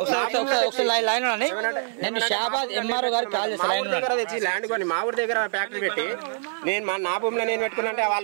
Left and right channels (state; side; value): silent; left; 62 dB below the other